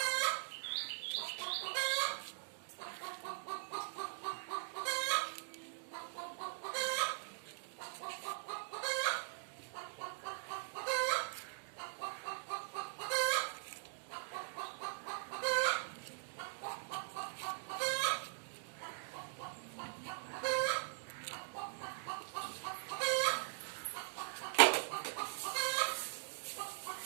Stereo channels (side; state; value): left; silent; digital silence